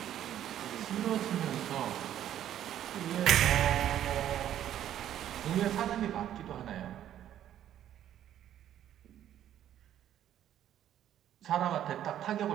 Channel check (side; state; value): left; quieter; 11.2 dB